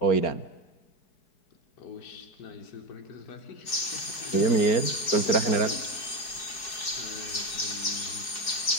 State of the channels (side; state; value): right; late; 4.7 ms